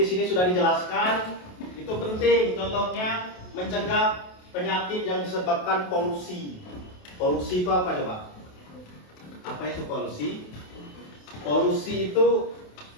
sini sudah dijelaskan, itu penting. Contohnya mencegah penyakit yang disebabkan polusi. Polusi itu apa coba? Apa itu polusi? Polusi itu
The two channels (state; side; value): late; right; 28 ms